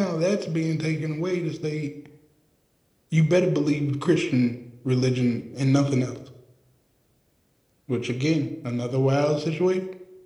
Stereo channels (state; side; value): identical; both; correlation 1.00